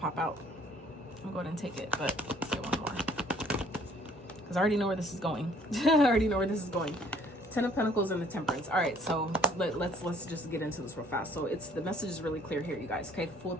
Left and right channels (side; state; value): both; normal; correlation 0.59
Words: out. I'll go ahead and take it, but let's get one more, because I already know where this is going. I already know where this is going. Ten of Pentacles and the Temperance. All right, so let's just get into this real fast. So the message is really clear here, you guys. Okay, full at